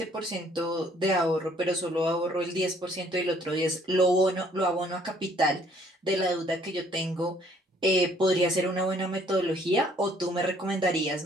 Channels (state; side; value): normal; both; correlation 0.62